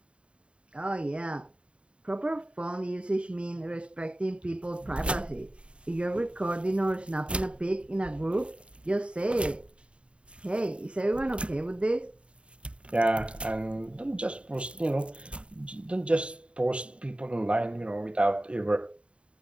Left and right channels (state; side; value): late; left; 0.058 ms